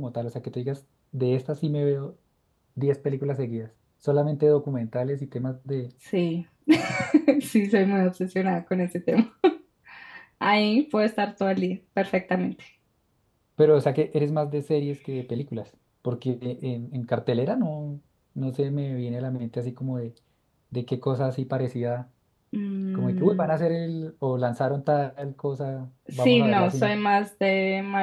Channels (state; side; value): identical; both; correlation 1.00